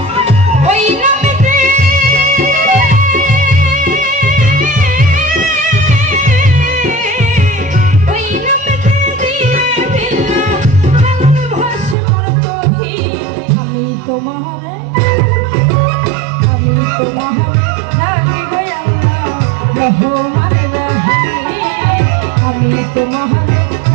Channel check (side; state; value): left; drops out; at 12.0 s